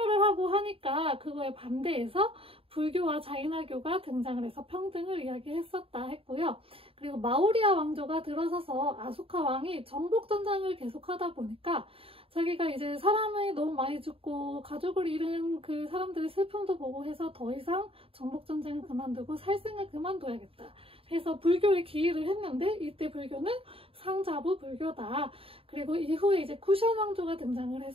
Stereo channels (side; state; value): left; late; 0.27 ms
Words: 하고 하니까 그거에 반대해서 불교와 자이나교가 등장을 해서 평등을 이야기했었다 했고요. 그리고 마우리아 왕조가 들어서서 아소카 왕이 정복 전쟁을 계속하다 보니까 자기가 이제 사람이 너무 많이 죽고 가족을 잃은 그 사람들의 슬픔도 보고 해서 더 이상 정복 전쟁을 그만두고 살생을 그만둬야겠다 해서 불교에 기일을 했는데, 이때 불교는 상자부 불교다. 그리고 이후에 이제 쿠션 왕조가 등장을